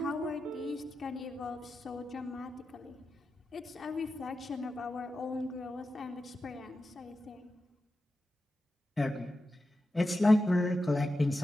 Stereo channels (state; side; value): normal; both; correlation 0.90